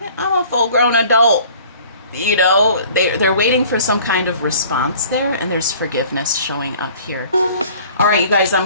I'm a full-grown adult. You know, they're waiting for some kind of response there, and there's forgiveness showing up here. All right, you guys,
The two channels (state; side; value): inverted; both; correlation -0.50